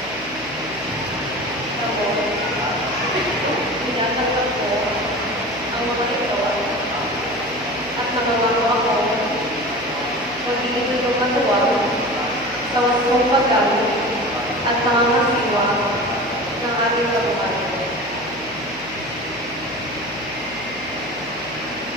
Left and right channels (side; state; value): left; noise; hum, 18 dB below the sound